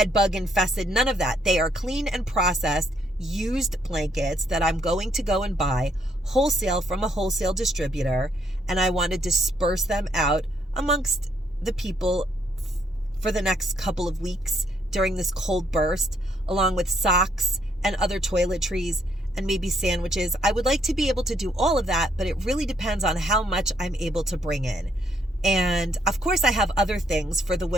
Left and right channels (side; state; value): both; normal; correlation 0.71